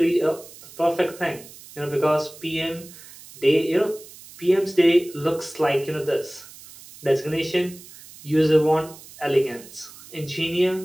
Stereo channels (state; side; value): noise; right; hiss, 19 dB below the sound